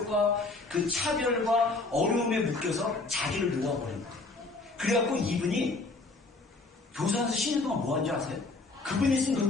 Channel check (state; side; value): quieter; right; 3.4 dB